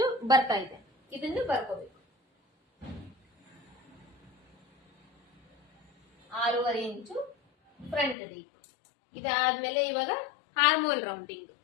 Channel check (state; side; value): drops out; right; at 8.2 s